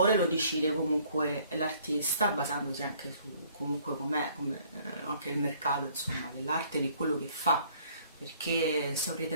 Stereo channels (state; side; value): inverted; both; correlation -0.60